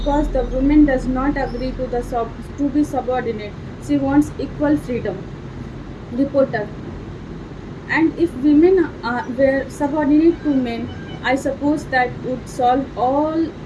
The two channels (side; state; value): both; identical; correlation 1.00